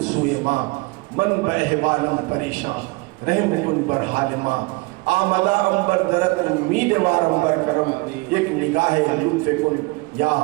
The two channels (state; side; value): quieter; left; 25.6 dB